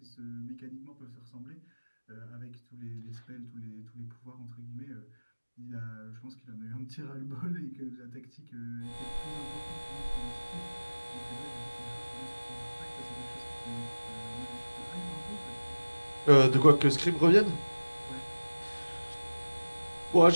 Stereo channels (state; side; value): inverted; both; correlation -1.00